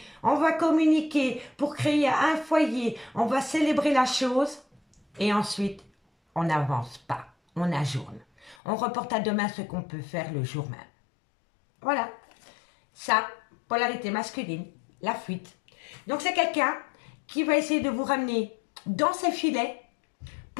on va communiquer pour créer un foyer. On va célébrer la chose et ensuite, on n'avance pas. On ajourne. On reporte à demain ce qu'on peut faire le jour même. Voilà. Ça, polarité masculine, la fuite. Donc c'est quelqu'un qui va essayer de vous ramener dans ses filets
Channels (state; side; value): drops out; right; at 8.6 s